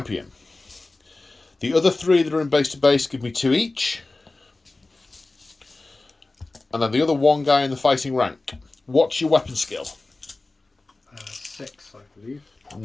The other 3 that are in base to base give me 2 each. And then the other 1 guy in the fighting rank. What's your weapon skill? 6, I believe.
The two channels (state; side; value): quieter; right; 3.2 dB